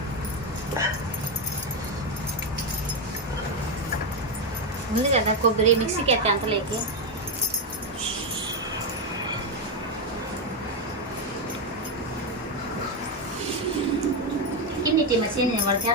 ఉంది కదా కొబ్బరి మిక్సీకి ఎత్తే అంతలేకి ఇన్నిటి మసీని వాడికి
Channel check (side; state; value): both; normal; correlation 0.07